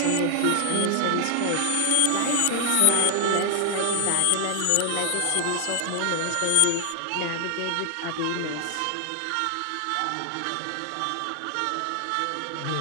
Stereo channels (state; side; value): different; both; correlation 0.00